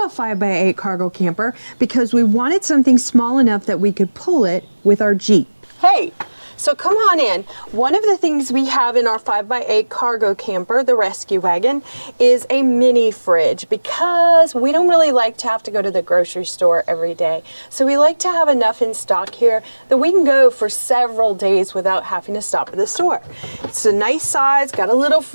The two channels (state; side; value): inverted; both; correlation -1.00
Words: a 5x8 cargo camper because we wanted something small enough that we could pull it with our Jeep. Hey, so come on in. One of the things we have in our 5x8 cargo camper, the rescue wagon, is a mini fridge because we don't really like to have to go to the grocery store every day. So we like to have enough in stock here that we can go for several days without having to stop at the store. It's a nice size, got a little